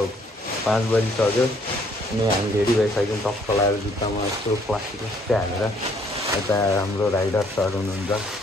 5 बजिसक्यो अनि हामी रेडी भइसक्यौँ। टक्क लगाएर जुत्तामा यस्तो प्लास्टिक हालेर। यता हाम्रो राइडर सर हुनुहुन्छ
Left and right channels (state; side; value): normal; both; correlation 0.64